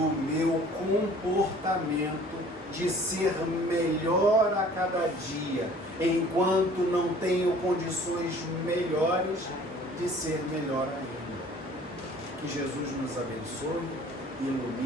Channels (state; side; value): normal; both; correlation 0.51